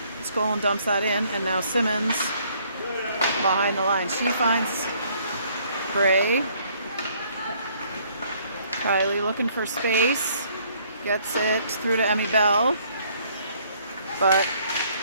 Skolin dumps that in. And now Simmons behind the line. She finds Bray. Kylie looking for space. Gets it through to Emmy Bell, but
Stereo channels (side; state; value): both; inverted; correlation -0.63